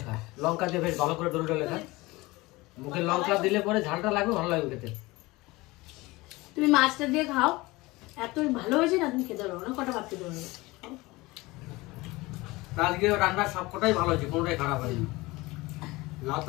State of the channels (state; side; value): quieter; right; 21.6 dB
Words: খা। লঙ্কা দিয়ে বেশ ভালো করে ডলে ডলে খা। মুখে লঙ্কা দিলে পরে ঝালটা লাগবে, ভালো লাগবে খেতে। তুমি মাছটা দিয়ে খাও, এত ভালো হয়েছে না, তুমি খেতে পারবো না, কটা ভাত খেতে পারবে। আজকে রান্নার সবকটাই ভালো হয়েছে, কোনোটাই খারাপ হয়নি। লাউ